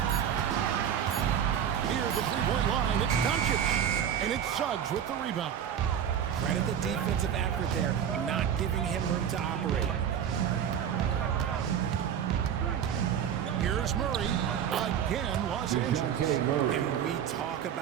Near the three-point line, it's Doncic. And it's Suggs with the rebound. Credit the defensive effort there, not giving him room to operate. Here's Murray. Again, Los Angeles. And we talk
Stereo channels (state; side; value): quieter; left; 8.9 dB